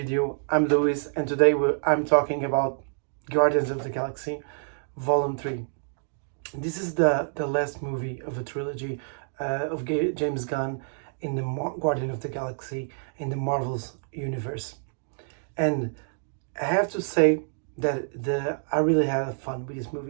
I'm Luis, and today I'm talking about Guardians of the Galaxy Volume 3. This is the last movie of a trilogy of James Gunn in the Guardian of the Galaxy in the Marvel's universe. And I have to say that I really had fun with this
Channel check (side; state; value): left; silent; digital silence